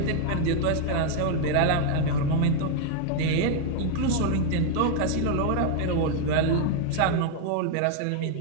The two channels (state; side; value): different; both; correlation 0.00